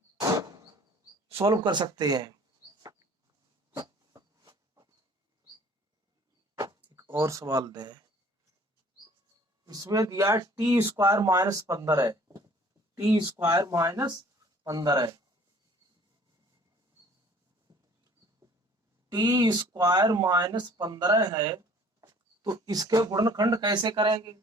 सॉल्व कर सकते हैं। एक और सवाल दे, इसमें दिया टी स्क्वायर -15 है, टी स्क्वायर -15 है, टी स्क्वायर -15 है, तो इसके गुणनखंड कैसे करेंगे।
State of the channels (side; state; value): both; normal; correlation 0.53